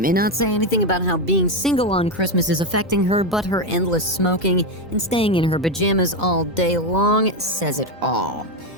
not say anything about how being single on Christmas is affecting her, but her endless smoking and staying in her pajamas all day long says it all.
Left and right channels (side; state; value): both; normal; correlation 0.09